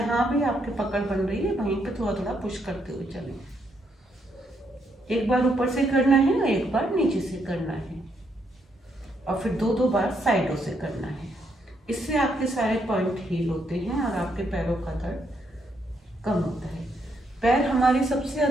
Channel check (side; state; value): both; normal; correlation 0.76